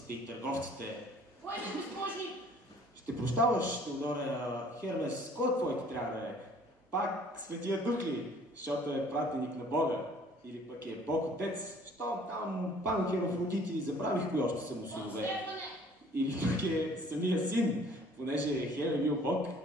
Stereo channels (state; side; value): normal; both; correlation 0.55